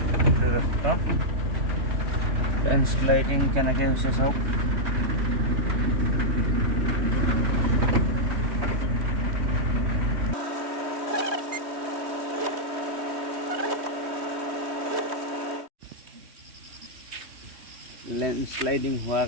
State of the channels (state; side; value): late; left; 3.2 ms